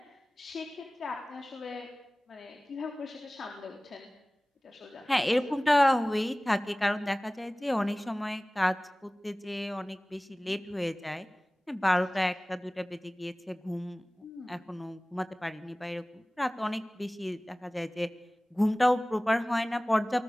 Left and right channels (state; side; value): normal; both; correlation 0.98